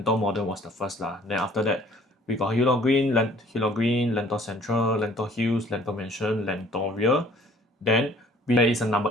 Modern was the first lah. Then after that, we got Hillock Green, Lentor Central, Lentor Hills, Lentor Mansion, Lentoria. Then there is a number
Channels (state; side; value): normal; both; correlation 0.55